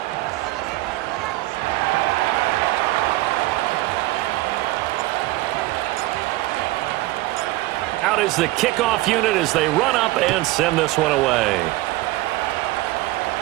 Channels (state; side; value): quieter; left; 18.6 dB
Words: Out is the kickoff unit as they run up and send this one away.